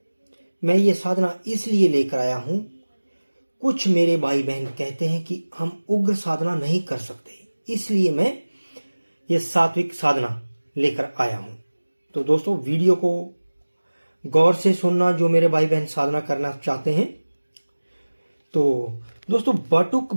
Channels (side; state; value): both; inverted; correlation -1.00